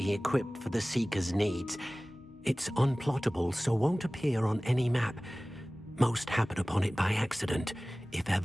equipped for the Seeker's needs. It's unplottable, so won't appear on any map. Most happen upon it by accident, if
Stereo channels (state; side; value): normal; both; correlation 0.98